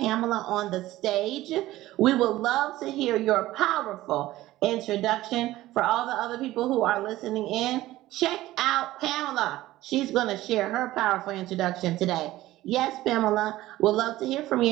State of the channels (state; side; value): quieter; left; 16.3 dB